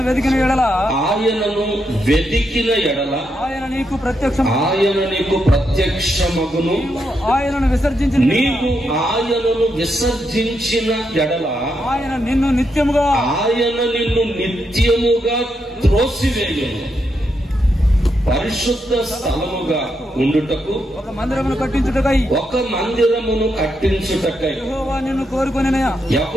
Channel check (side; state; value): both; normal; correlation 0.82